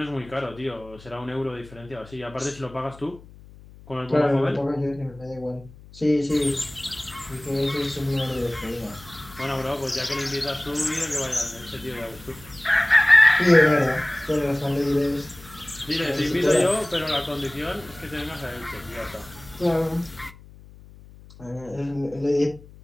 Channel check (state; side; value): noise; left; hum, 21 dB below the sound